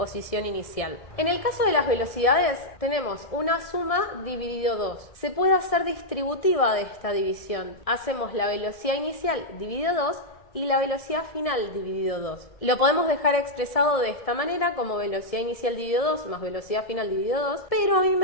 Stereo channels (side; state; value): right; late; 1.7 ms